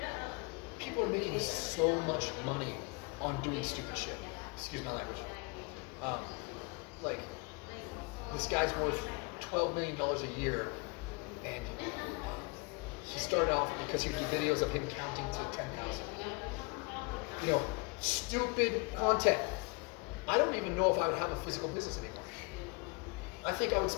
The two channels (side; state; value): right; quieter; 30.3 dB